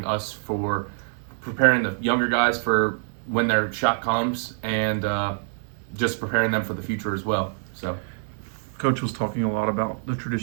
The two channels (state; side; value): silent; left; 61 dB below the other